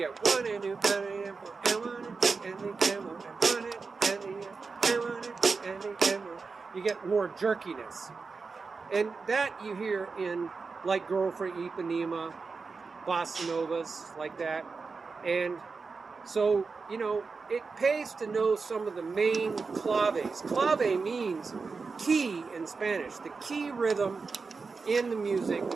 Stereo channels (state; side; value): quieter; left; 4.6 dB